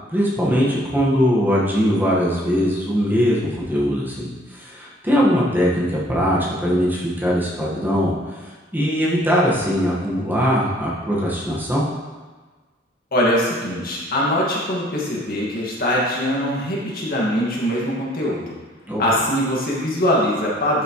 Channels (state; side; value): normal; both; correlation 0.59